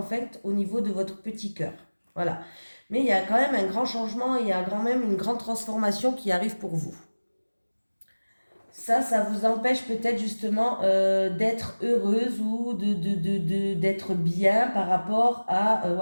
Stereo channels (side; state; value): both; inverted; correlation -1.00